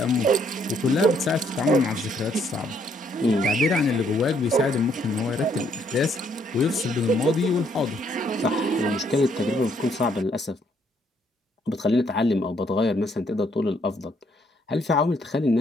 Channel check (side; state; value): both; normal; correlation 0.69